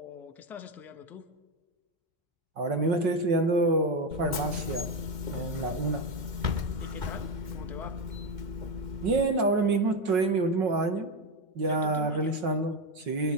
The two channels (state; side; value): late; left; 2.1 ms